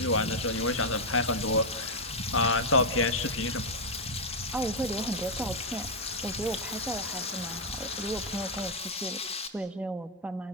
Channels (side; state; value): both; normal; correlation 0.00